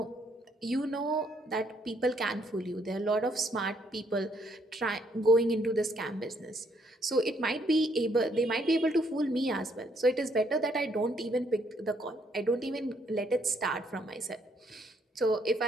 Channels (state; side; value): normal; both; correlation 0.70